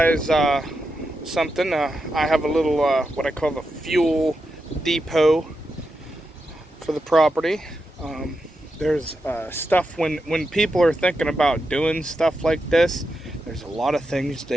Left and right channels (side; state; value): both; normal; correlation 0.87